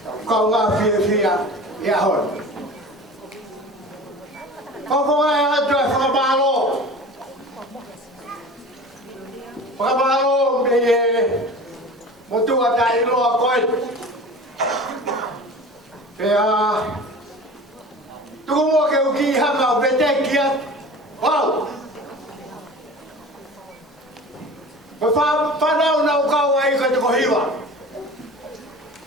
câu ngà phía, ya hỏi, có ai là chuyện phá ba lô bây một tu ở đây lo coi. Kaya tumo ke uki hanga bete kia wow fa na una ka wai ka ko hiwa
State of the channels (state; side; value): normal; both; correlation 0.38